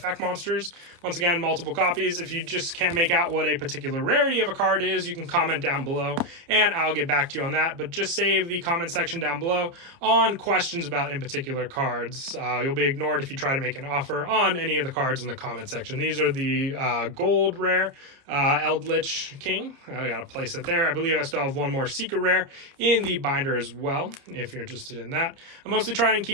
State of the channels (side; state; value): left; late; 29 ms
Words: monsters. Once again, multiple copies. If you just can't make out what a particular rarity of a card is, you can comment down below, and I'll get back to you on that. But just save the comment section down below on questions about in particular cards. You'll be ignored if you try to make an offer on any of the cards in the comment section. These are the gold rare Eldritch King. I gotta place it there. I believe I still have one more secret rare in the binder as well, if you're interested in that. I mostly try and